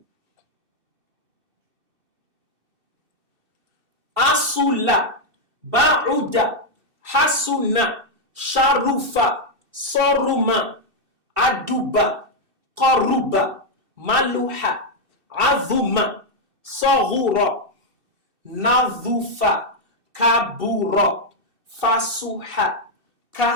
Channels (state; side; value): late; left; 2.7 ms